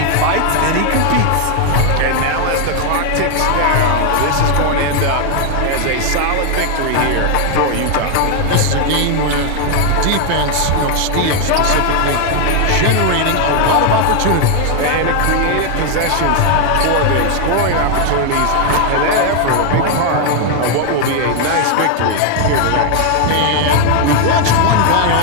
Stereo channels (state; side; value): different; both; correlation 0.00